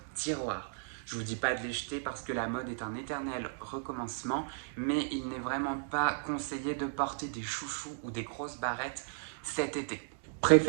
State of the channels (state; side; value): silent; left; digital silence